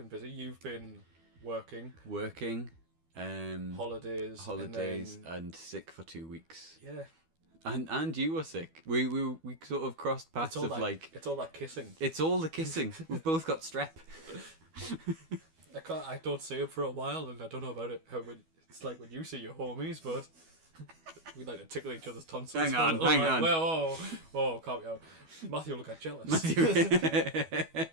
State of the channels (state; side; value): late; left; 12 ms